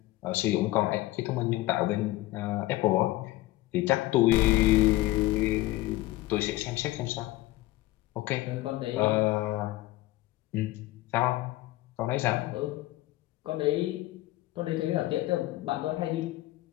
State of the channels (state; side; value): quieter; right; 17.6 dB